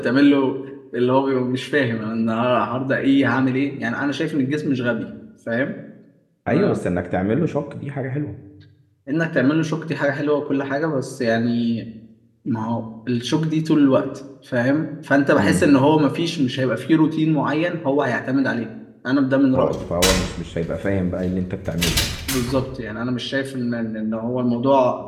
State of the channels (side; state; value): both; identical; correlation 1.00